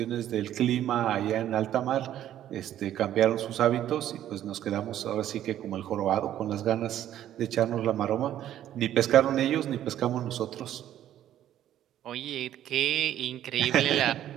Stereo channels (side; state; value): left; quieter; 11.7 dB